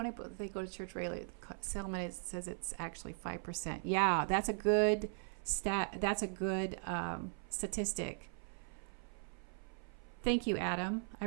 they go to church regularly, settlement says it's actually 5%. Yeah, that's a good stat. That's a good statistic. Thank you, Adam. I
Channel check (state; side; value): silent; left; 52 dB below the other